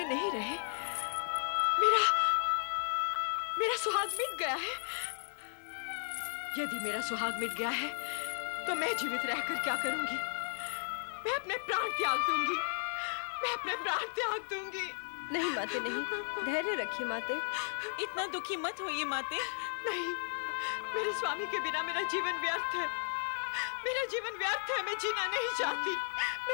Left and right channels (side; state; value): right; silent; 54 dB below the other